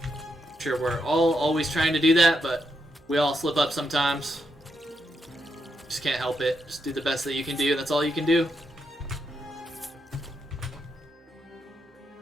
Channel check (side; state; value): both; normal; correlation 0.81